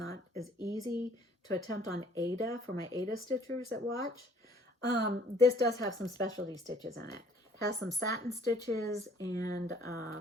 as easy to attempt on Ada for my Ada stitchers that watch. This does have some specialty stitches in it. It has some satin stitches and I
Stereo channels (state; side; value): normal; both; correlation 0.57